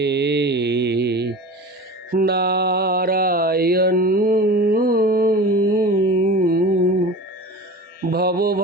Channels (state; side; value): normal; both; correlation 0.34